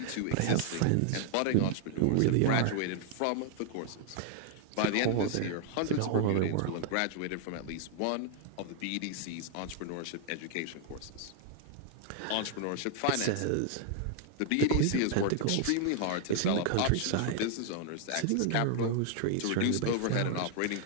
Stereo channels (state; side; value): different; both; correlation 0.00